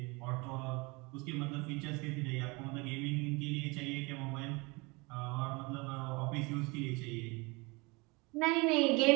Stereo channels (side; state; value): left; quieter; 26.6 dB